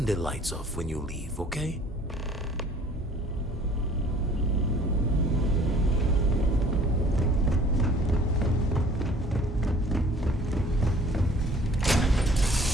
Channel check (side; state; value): both; normal; correlation 0.53